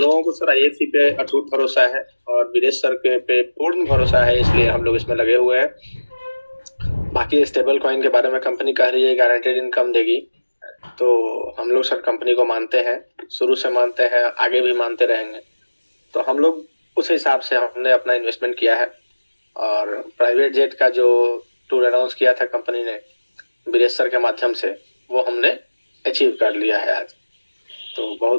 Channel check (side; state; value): both; inverted; correlation -1.00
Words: को सर आईएफसी पे अटूट भरोसा है और विदेश सर के पे पूर्ण भरोसा है, इसलिए हम लोग इसमें लगे हुए हैं। बाकी स्टेबल कॉइन के बारे में कंपनी कह रही है गारंटेड इनकम देगी, तो हम लोग सर कंपनी को मानते हैं, शुरू से मानते हैं, आगे भी मानते रहेंगे। तो हम लोग उस हिसाब से हमने अपना इन्वेस्टमेंट किया है। और प्राइवेट जेट का जो टूर अनाउंस किया था कंपनी ने वीरेश सर के माध्यम से, वो हमने अचीव कर लिया है आज। तो